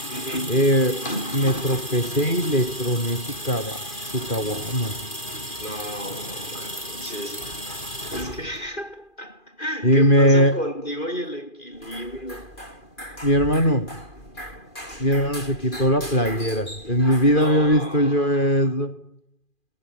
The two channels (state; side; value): late; right; 2.4 ms